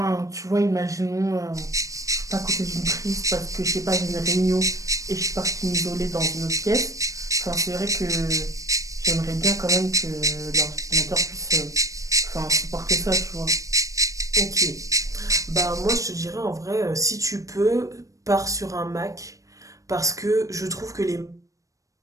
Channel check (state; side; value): late; left; 0.16 ms